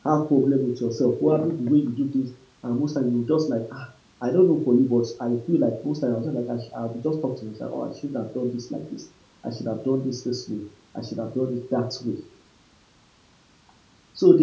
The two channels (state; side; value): identical; both; correlation 1.00